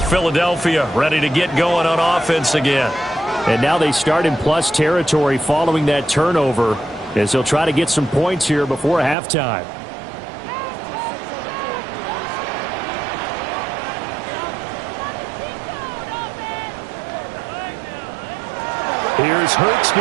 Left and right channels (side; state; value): left; drops out; at 9.2 s